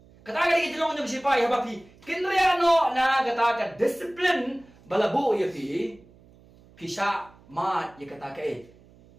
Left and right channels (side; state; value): right; noise; hum, 26 dB below the sound